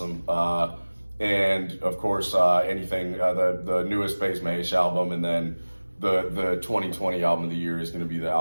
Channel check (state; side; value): inverted; both; correlation -1.00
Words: And of course, anything, the newest Bass Mahesh album, and then the 2020 album of the year is going to be the